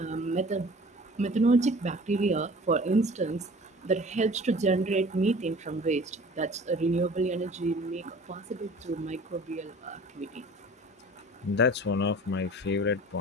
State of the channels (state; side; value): normal; both; correlation 0.45